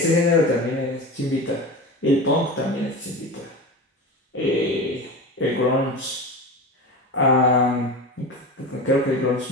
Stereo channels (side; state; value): both; normal; correlation 0.28